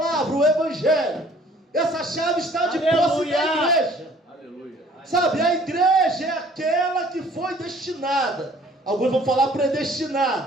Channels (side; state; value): both; normal; correlation 0.55